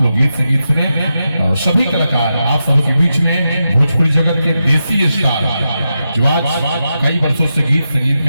लोग गीत संगीत सुने। और सभी कलाकार आप सबके बीच में भोजपुरी जगत के देसी स्टार जो आज कई वर्षों से गीत संगीत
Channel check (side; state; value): both; inverted; correlation -0.88